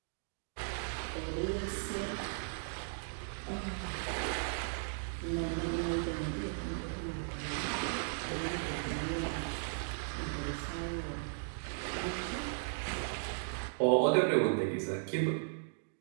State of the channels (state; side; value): silent; left; digital silence